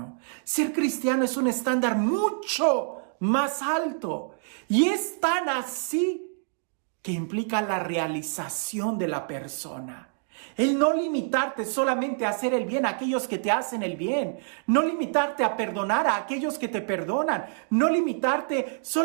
Ser cristiano es un estándar mucho más alto. Y es tan así que implica la realización de la persona. El no limitarte solamente a hacer el bien a aquellos que te hacen el bien. No limitarte a perdonar a aquellos que te perdonan. No limitarte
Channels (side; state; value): left; silent; digital silence